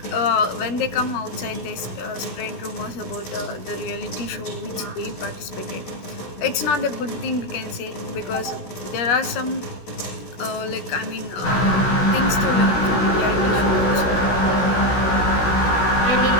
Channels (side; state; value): right; late; 16 ms